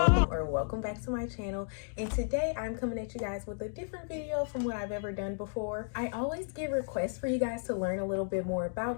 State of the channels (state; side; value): silent; right; digital silence